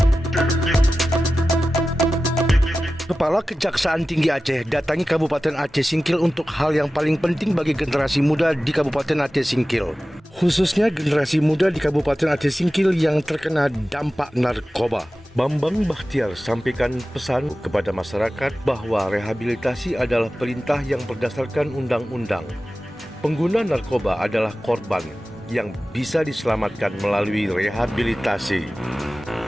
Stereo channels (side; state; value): both; normal; correlation 0.95